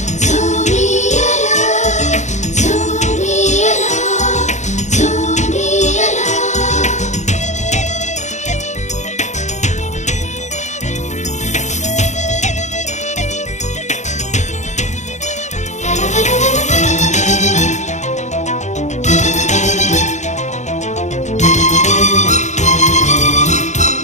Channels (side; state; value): right; late; 0.34 ms